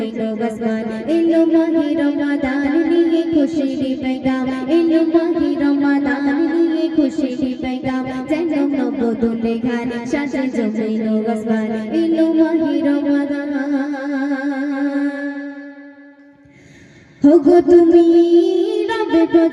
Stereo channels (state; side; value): identical; both; correlation 1.00